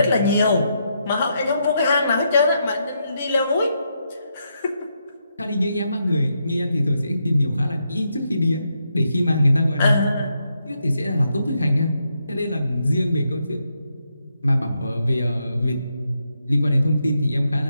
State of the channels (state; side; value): inverted; both; correlation -0.81